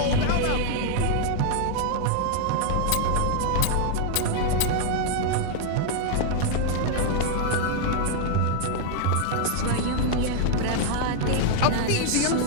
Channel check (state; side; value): different; both; correlation 0.00